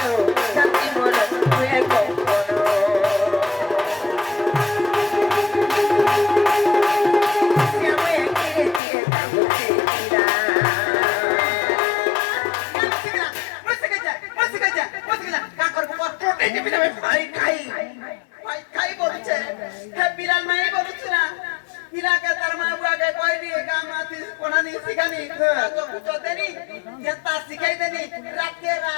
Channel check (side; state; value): right; drops out; at 8.8 s